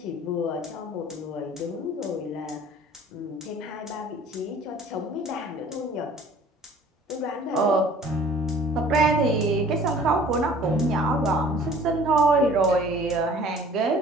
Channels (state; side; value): normal; both; correlation 0.50